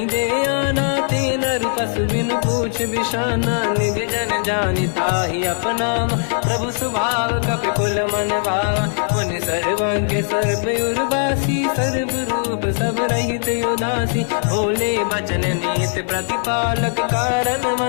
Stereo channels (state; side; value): silent; right; 55 dB below the other